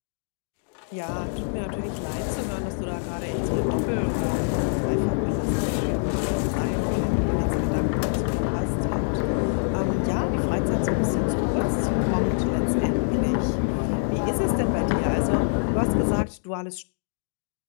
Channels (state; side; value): silent; right; digital silence